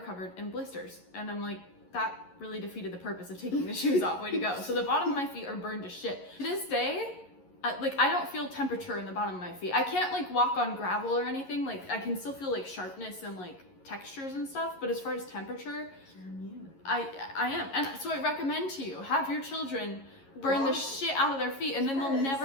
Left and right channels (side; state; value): right; late; 11 ms